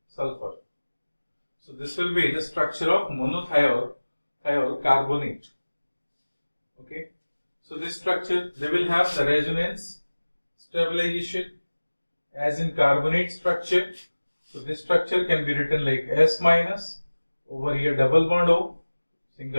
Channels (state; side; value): inverted; both; correlation -1.00